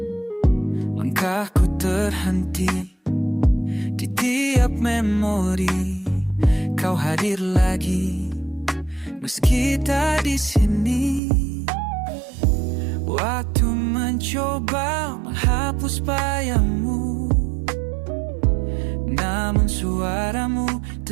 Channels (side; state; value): left; drops out; at 11.2 s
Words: Langkahku terhenti di tiap memori, kau hadir lagi meski tak di sini. Waktu mencoba menghapus bayangmu, namun suaramu